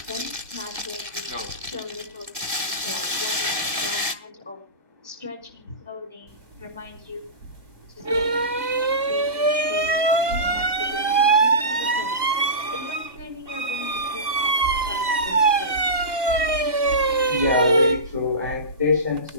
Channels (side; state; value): left; late; 1.9 ms